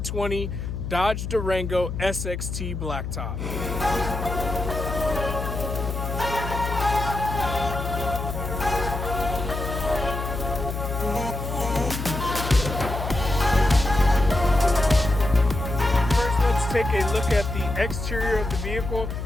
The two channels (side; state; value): left; noise; hum, 5 dB below the sound